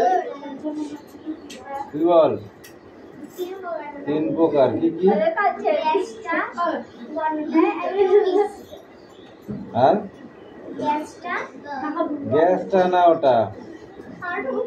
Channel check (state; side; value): identical; both; correlation 1.00